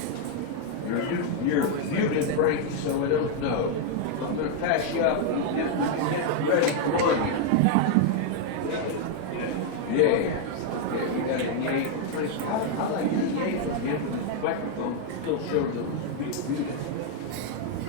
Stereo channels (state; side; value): different; both; correlation 0.00